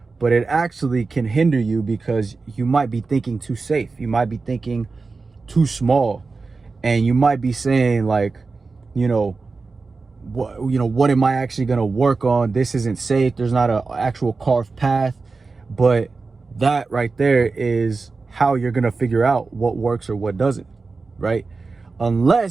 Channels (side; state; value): left; quieter; 4.1 dB